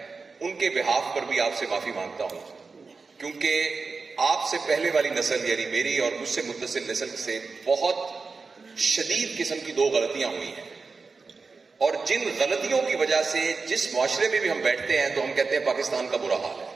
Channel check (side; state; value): left; quieter; 4.4 dB